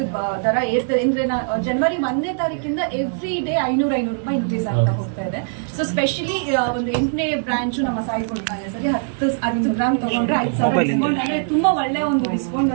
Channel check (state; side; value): silent; left; digital silence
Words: ದರ ಏರ್ತದೆ ಅಂದ್ರೆ ಜನವರಿ 1ನೇ ತಾರೀಕಿಂದ ಎವ್ರಿ ಡೇ 500 ರೂಪಾಯಿ ಇನ್ಕ್ರೀಸ್ ಆಗ್ತಾ ಹೋಗ್ತಾ ಇದೆ. ಸೊ ಸ್ಪೆಷಲಿ ಒಂದು 8ನೇ ಬ್ರಾಂಚ್ ನಮ್ಮ ಸಾಯಿ ಕೊಡ್ತಾನೆ ಸರಿ 10 ಗ್ರಾಮ್ ತಗೊಂಡ್ರೆ 5,000 ಡಿಸ್ಕೌಂಟ್ ಅಂದ್ರೆ ತುಂಬಾ ಒಳ್ಳೆ ಒಂದು ಡಿಸ್ಕೌಂಟ್,